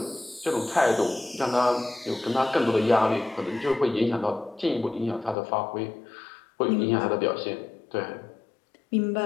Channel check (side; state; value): right; drops out; at 5.4 s